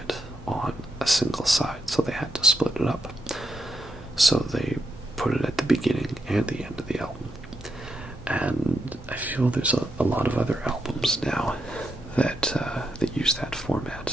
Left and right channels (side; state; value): both; normal; correlation 0.82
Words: on a single side, so they had to split it up. So they put it at the beginning and the end of the album. And I feel there's a lot of other albums now that use that